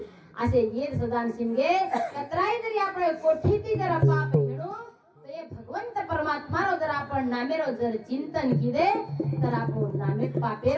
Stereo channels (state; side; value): identical; both; correlation 1.00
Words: असे येद सदा शिनगे कतराई जरी आपण कोठीती जर पाप हेणू तर हे भगवंत परमात्मारो जर आपण नामेरो जर चिंतन किदे तर आपण नामे